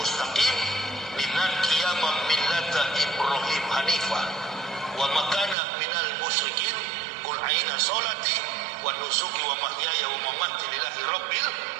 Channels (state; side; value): drops out; left; at 5.6 s